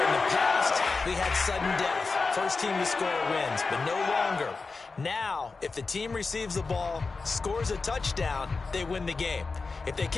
the past, we had sudden death. First team to score wins, but no longer. Now, if the team receives the ball, scores a touchdown, they win the game. If they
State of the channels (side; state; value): right; quieter; 4.2 dB